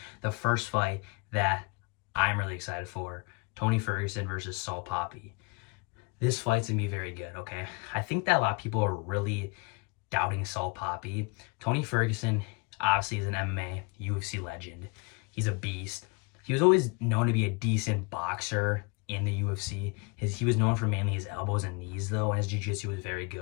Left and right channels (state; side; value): quieter; right; 30.6 dB